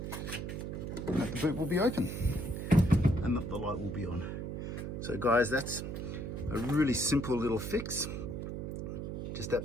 and that the boot will be open, and that the light will be on. So guys, that's a really simple little fix. Just that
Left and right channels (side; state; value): right; noise; hum, 5 dB below the sound